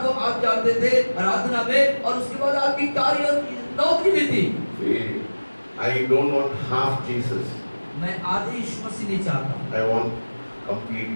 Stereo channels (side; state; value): both; inverted; correlation -1.00